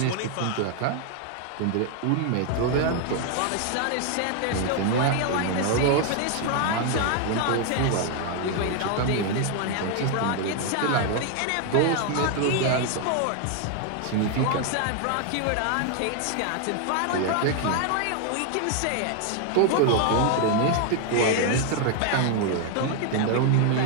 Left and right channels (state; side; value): different; both; correlation 0.00